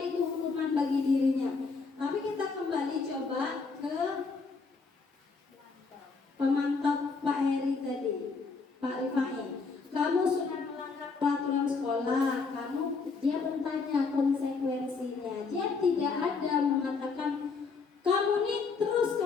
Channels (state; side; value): quieter; right; 4.6 dB